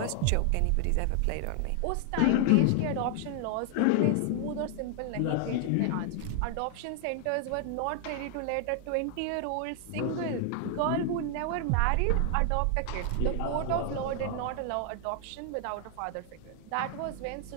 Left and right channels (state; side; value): different; both; correlation 0.00